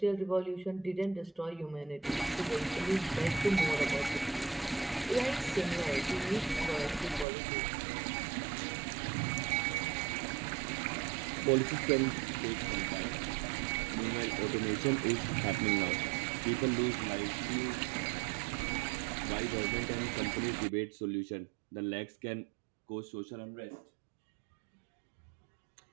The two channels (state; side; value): drops out; left; at 7.2 s